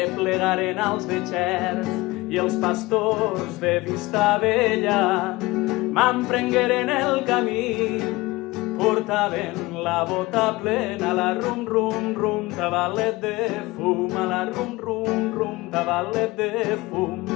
als de Xert i els pastors de Vistabella m'emprengueren el camí, portaven la bota plena, la rum rum rum, tabalet de fum, a la rum rum rum, tabalet de fum.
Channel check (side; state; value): right; quieter; 21.1 dB